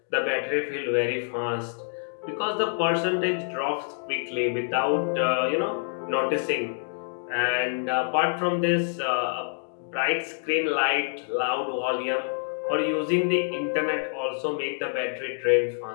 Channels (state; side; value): silent; right; 60 dB below the other